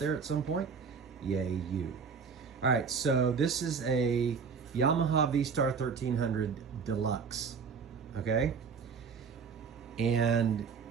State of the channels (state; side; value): quieter; left; 5.8 dB